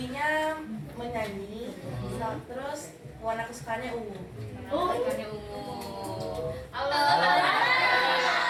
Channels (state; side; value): identical; both; correlation 1.00